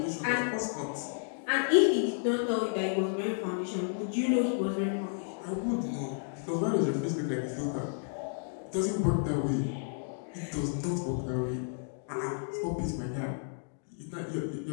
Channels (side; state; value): right; silent; digital silence